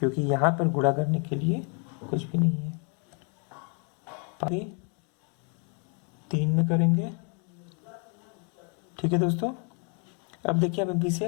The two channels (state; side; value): quieter; right; 38.3 dB